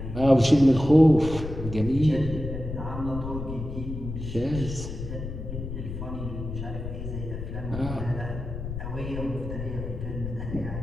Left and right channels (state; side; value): noise; left; rumble, 7 dB below the sound